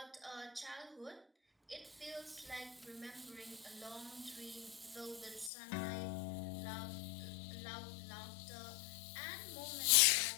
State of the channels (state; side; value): drops out; right; at 5.5 s